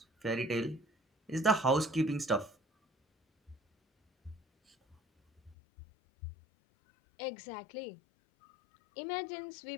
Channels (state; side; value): drops out; right; at 5.6 s